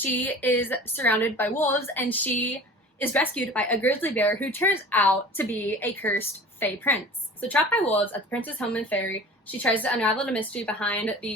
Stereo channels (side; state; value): both; normal; correlation 0.40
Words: is surrounded by wolves, and she is rescued by a grizzly bear who turns out to be a cursed Fae prince. So trapped by wolves at the prince's home in Fairy, she tries to unravel the mystery behind